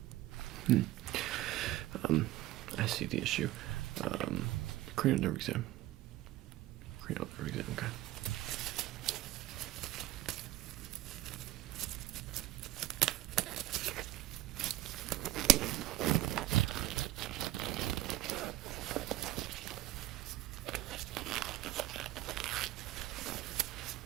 I see the issue. Cranial nerve exam. Cranial nerve exam, okay.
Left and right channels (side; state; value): left; quieter; 16.0 dB